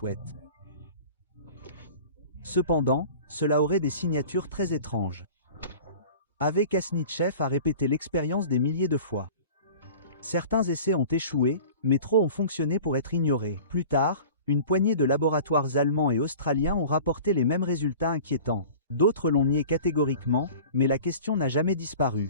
Cependant, cela aurait des signatures très étranges. Ave Kasnitchev a répété l'expérience des milliers de fois. Certains essais ont échoué, mais trop ont fonctionné pour être ignorés. Plus tard, une poignée de laboratoires allemands et australiens ont rapporté les mêmes résultats inquiétants. D'autres l'ont nié catégoriquement, mais la question n'a jamais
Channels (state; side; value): inverted; both; correlation -0.41